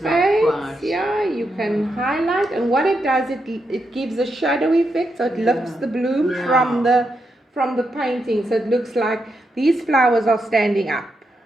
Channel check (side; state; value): both; normal; correlation 0.83